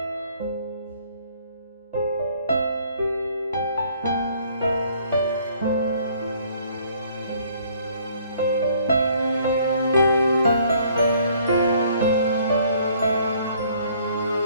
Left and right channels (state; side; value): inverted; both; correlation -0.61